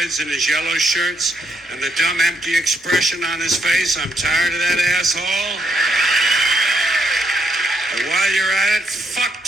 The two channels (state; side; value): normal; both; correlation 0.77